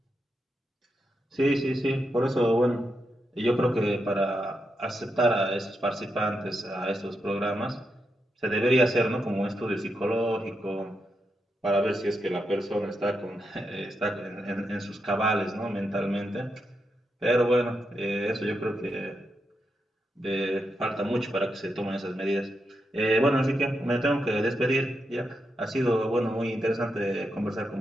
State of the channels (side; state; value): both; normal; correlation 0.84